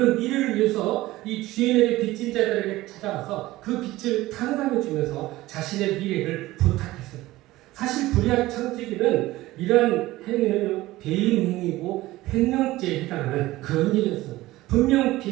미래를 위해서 이 주인에게 빚진 자들에게 찾아가서 그 빚을 탕감해 주면서 자신의 미래를 부탁했어요. 사실 불의한 청지기는 이러한 행위는 배임 행위고 횡령죄에 해당하는 그런 일이었어요. 분명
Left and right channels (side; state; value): left; quieter; 17.6 dB